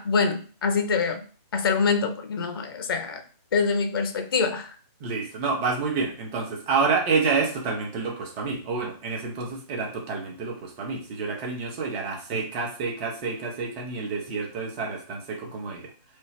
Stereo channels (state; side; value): inverted; both; correlation -0.31